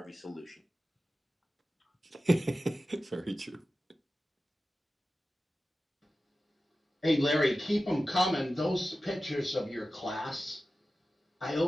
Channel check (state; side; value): normal; both; correlation 0.94